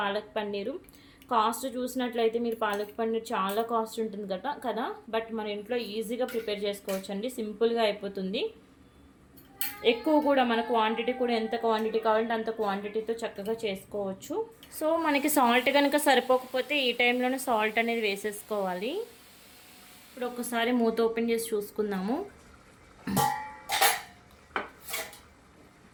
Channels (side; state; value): both; identical; correlation 1.00